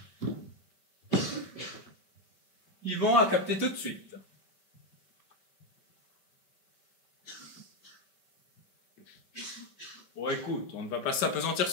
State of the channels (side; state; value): right; late; 5.2 ms